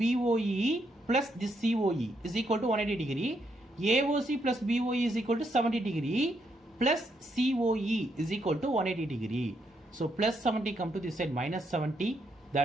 plus this COE is equal to 180 degree. AOC plus BOE is equal to 70 degree plus COE is equal to 180 degree. So plus 70 come to this side minus 70.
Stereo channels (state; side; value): normal; both; correlation 0.77